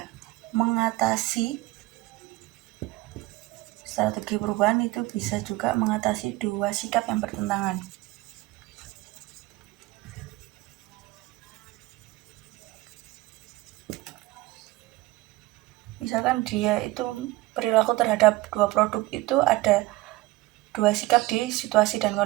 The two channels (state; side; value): quieter; left; 19.5 dB